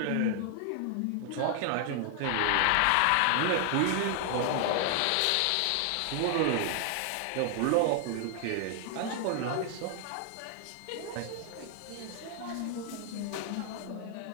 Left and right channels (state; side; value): different; both; correlation 0.00